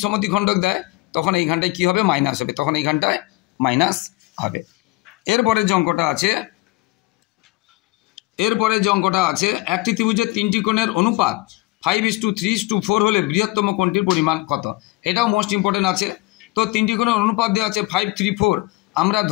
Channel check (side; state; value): right; quieter; 21.1 dB